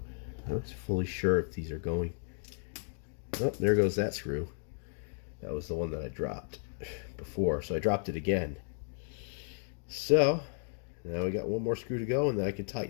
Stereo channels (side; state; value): right; silent; 55 dB below the other